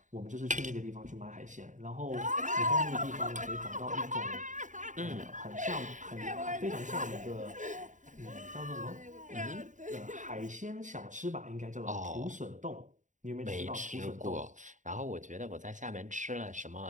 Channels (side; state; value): left; late; 0.36 ms